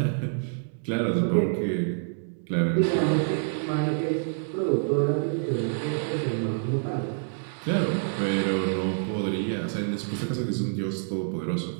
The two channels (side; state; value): left; silent; digital silence